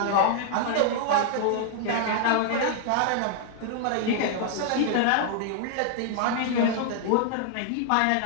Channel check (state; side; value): different; both; correlation 0.00